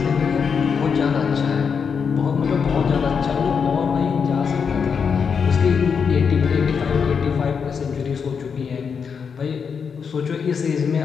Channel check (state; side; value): quieter; right; 6.3 dB